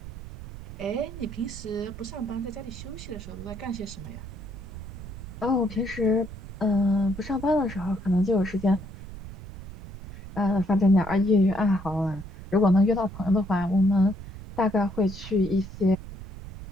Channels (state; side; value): noise; right; rumble, 12 dB below the sound